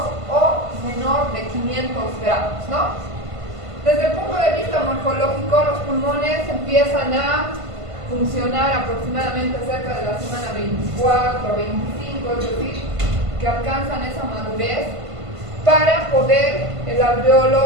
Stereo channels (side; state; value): left; late; 1.5 ms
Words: o menor de 500 gramos, ¿no? Desde el punto de vista morfológico, los pulmones empiezan a funcionar aproximadamente cerca de la semana 24, 25, es decir, que alcanzan esa madurez para poder el